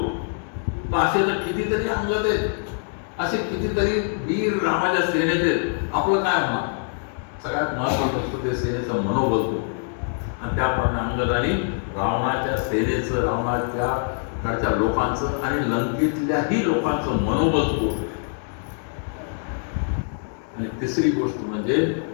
तर असे तर कितीतरी अंगद आहेत, असे कितीतरी वीर रामाच्या सेनेत आहेत, आपलं काय होणार? सगळ्यात महत्वाचं असतं ते सेनेचं मनोबल होतं. आणि त्याप्रमाणे अंगदाने रावणाच्या सेनेचं, रावणाच्या कडच्या लोकांचं आणि लंकेतल्याही लोकांचं मनोबल होतं. आणि तिसरी गोष्ट म्हणजे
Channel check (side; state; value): right; silent; 63 dB below the other